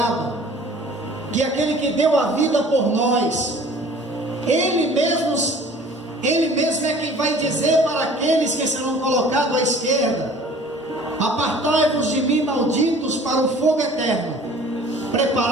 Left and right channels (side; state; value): both; normal; correlation 0.48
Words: que é aquele que deu a vida por nós, Ele mesmo é quem vai dizer para aqueles que serão colocados à esquerda: apartai-vos de mim, malditos, para o fogo eterno,